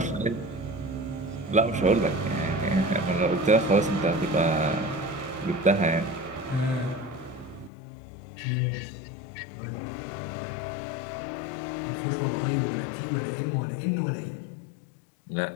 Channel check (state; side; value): drops out; right; at 7.7 s